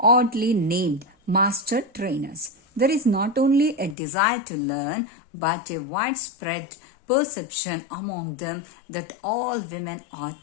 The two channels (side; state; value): right; drops out; at 4.0 s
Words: named master trainers. There is not only a desire to learn, but a widespread perception among them that all women are